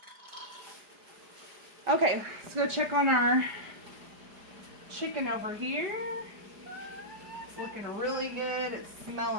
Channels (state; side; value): late; left; 4.9 ms